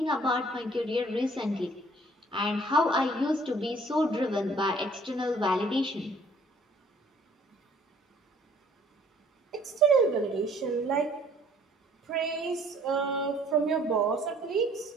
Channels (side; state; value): both; normal; correlation 0.57